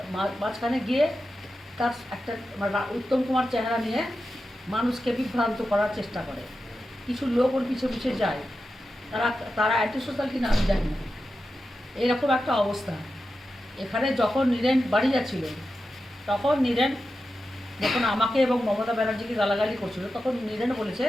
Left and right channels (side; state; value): both; normal; correlation 0.91